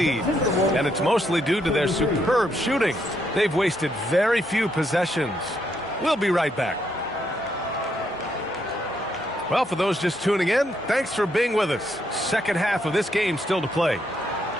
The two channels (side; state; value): both; normal; correlation 0.76